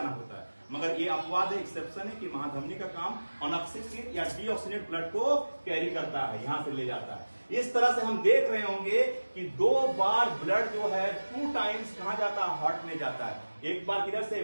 होता है, मगर ये अपवाद है, एक्सेप्शन है कि महाधमनी का काम अनऑक्सीजनेट या डीऑक्सीजनेट ब्लड को कैरी करता है, यहां से ले जाता है। इस तरह से हम देख रहे होंगे कि 2 बार ब्लड जो है 2 टाइम्स कहां जाता है? हार्ट में जाता है। एक बार किधर से?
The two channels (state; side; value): inverted; both; correlation -1.00